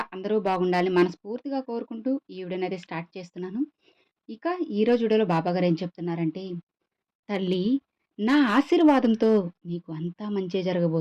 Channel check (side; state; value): both; identical; correlation 1.00